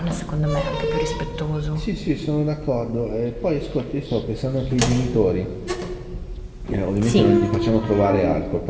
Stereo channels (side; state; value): both; identical; correlation 1.00